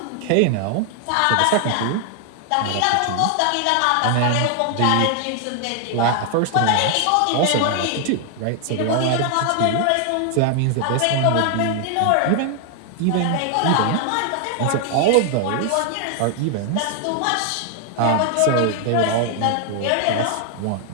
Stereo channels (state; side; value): different; both; correlation 0.00